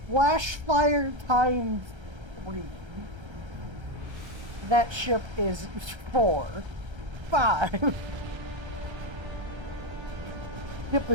Flash fire times 3. That ship is 4. 5. Ship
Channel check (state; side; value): late; left; 1.3 ms